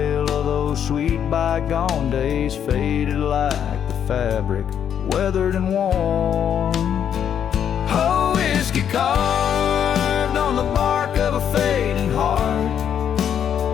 of those sweet bygone days, faded like the fabric, weathered and worn. Oh, whiskey carved on the bark of a fading heart.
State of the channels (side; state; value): right; quieter; 8.8 dB